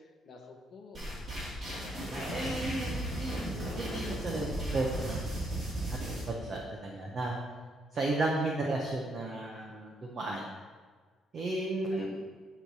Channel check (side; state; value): both; normal; correlation 0.74